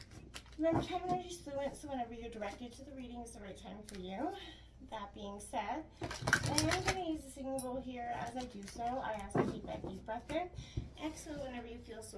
Remember, time energy is fluent, so whenever you're directed to the reading is the right time for you. That being said, I am going to use the singing bowl here. As I do so, I ask you to take that deep breath in. Exhale whenever you feel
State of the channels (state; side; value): identical; both; correlation 1.00